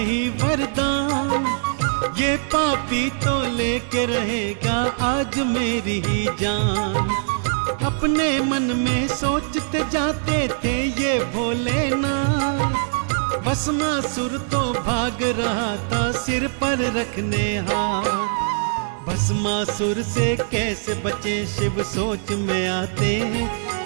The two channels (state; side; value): silent; left; 64 dB below the other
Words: वरदान, ये पापी तो लेके रहेगा आज मेरी ही जान। अपने मन में सोचते जाते थे ये भोलेनाथ, भस्मासुर तो भाग रहा था सिर पर रखने हाथ। भस्मासुर से कैसे बचे शिव सोच में आते हैं,